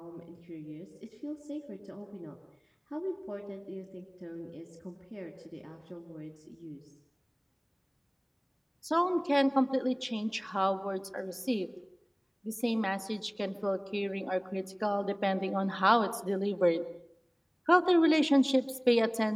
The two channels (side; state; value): both; identical; correlation 1.00